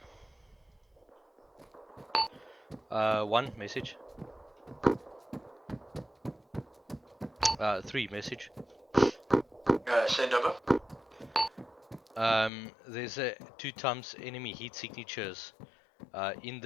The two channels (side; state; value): right; drops out; at 12.5 s